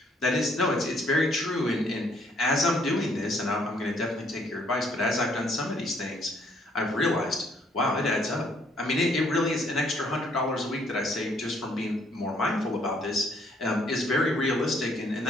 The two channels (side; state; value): both; normal; correlation 0.66